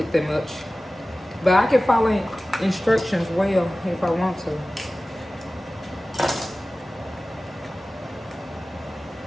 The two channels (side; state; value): both; normal; correlation 0.97